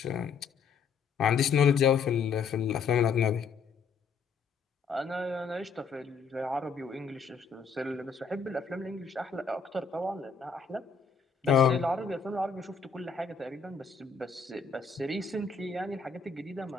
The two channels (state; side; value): quieter; right; 5.5 dB